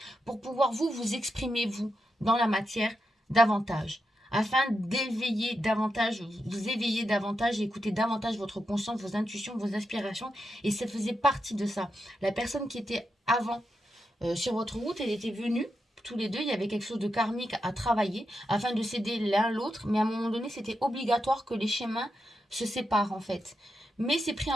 pour pouvoir vous exprimer, vous, dans la matière, davantage. Afin d'éveiller davantage, vous éveiller davantage, et écouter davantage votre conscience, vos intuitions, vos aspirations. Et ça faisait partie de ça. La personne qui était avant sur votre route, elle était venue tous les deux, il y avait quelque chose de karmique à travailler afin de s'aider l'un l'autre, mais à un moment donné, c'était obligatoire que les chemins se séparent en fait. Mais c'est pris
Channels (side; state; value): both; normal; correlation 0.86